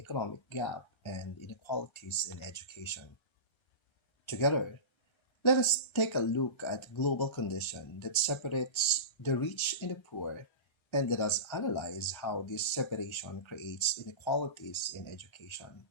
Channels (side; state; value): right; late; 1.3 ms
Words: gap and inequalities in education. Together, let us take a look at global condition that separates the rich and the poor, and let us analyze how this separation creates inequalities in education,